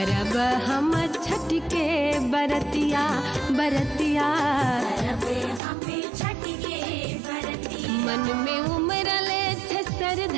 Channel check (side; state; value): left; drops out; at 5.6 s